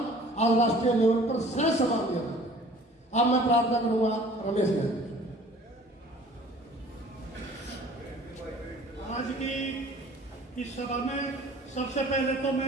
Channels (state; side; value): normal; both; correlation 0.50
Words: आज राष्ट्रीय लेवल पर सह समान दिया। अब मैं प्रार्थना करूंगा रमेश जी। आज की इस सभा में सबसे पहले तो